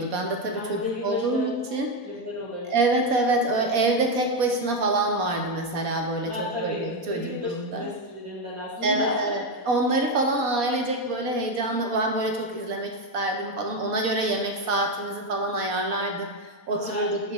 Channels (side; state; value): left; late; 4.2 ms